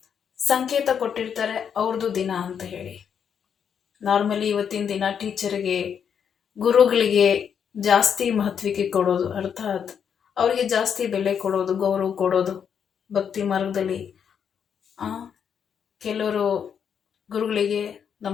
ಸಂಕೇತ ಕೊಟ್ಟಿರ್ತಾರೆ, ಅವ್ರದ್ದು ದಿನ ಅಂತ ಹೇಳಿ. ನಾರ್ಮಲಿ ಇವತ್ತಿನ ದಿನ ಟೀಚರ್ಗೆ, ಗುರುಗಳಿಗೆ ಜಾಸ್ತಿ ಮಹತ್ವಕ್ಕೆ ಕೊಡೋದು, ಅರ್ಥಾತ್ ಅವರಿಗೆ ಜಾಸ್ತಿ ಬೆಲೆ ಕೊಡೋದು, ಗೌರವ ಕೊಡೋದು. ಭಕ್ತಿ ಮಾರ್ಗದಲ್ಲಿ ಕೆಲವರು ಗುರುಗಳಿಗೆ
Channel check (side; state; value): right; quieter; 7.7 dB